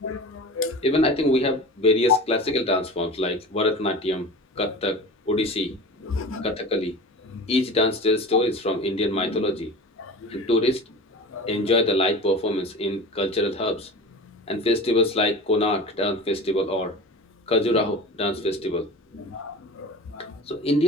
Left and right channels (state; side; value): normal; both; correlation 0.34